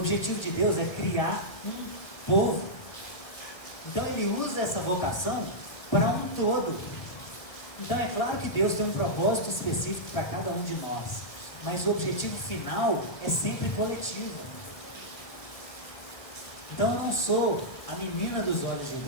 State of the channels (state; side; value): late; right; 1.9 ms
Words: de Deus é criar um povo. Então ele usa essa vocação para um todo. Então é claro que Deus tem um propósito específico para cada um de nós, mas o objetivo final é sempre coletivo. Então eu não sou a menina dos olhos de